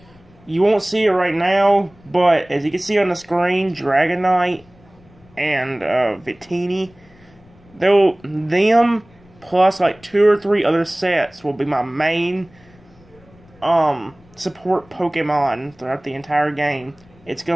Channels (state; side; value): noise; left; rumble, 28 dB below the sound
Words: You won't see it right now, but as you can see on the screen, Dragonite and Victini, them plus like 2 or 3 other sets will be my main support Pokemon throughout the entire game. It's